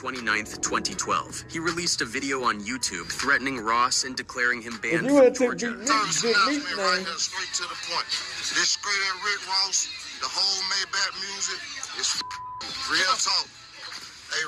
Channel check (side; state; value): both; identical; correlation 1.00